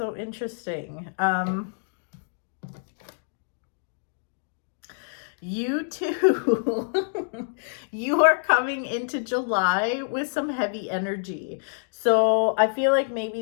interesting. You too. You are coming into July with some heavy energy. So I feel like maybe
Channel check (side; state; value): right; silent; digital silence